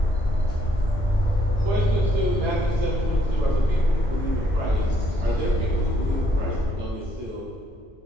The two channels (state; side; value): normal; both; correlation 0.70